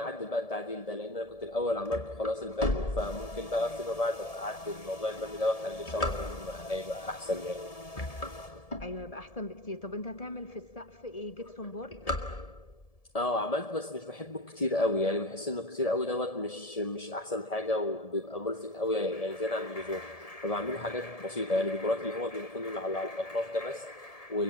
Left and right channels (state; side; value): late; right; 1.7 ms